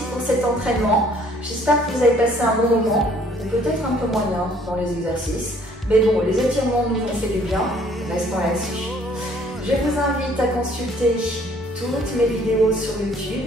pour cet entraînement. J'espère que vous avez passé un bon moment. Peut-être un peu moyen dans les exercices, mais bon, les étirements nous ont fait du bien, restons là-dessus. Je vous invite à consulter toutes mes vidéos sur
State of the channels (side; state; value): both; normal; correlation 0.59